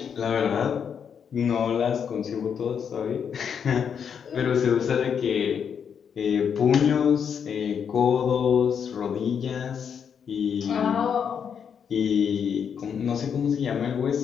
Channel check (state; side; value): quieter; right; 7.4 dB